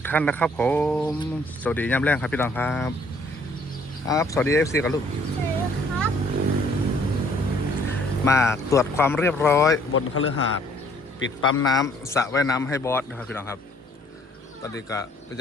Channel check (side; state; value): both; normal; correlation 0.61